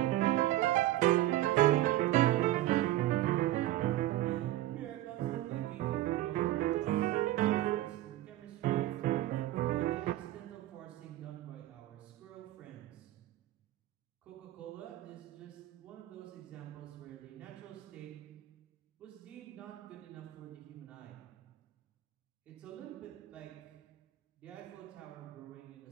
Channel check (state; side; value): quieter; left; 15.1 dB